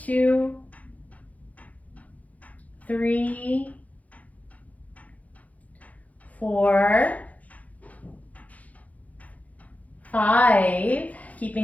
2, 3, 4, 5.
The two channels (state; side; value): late; right; 0.072 ms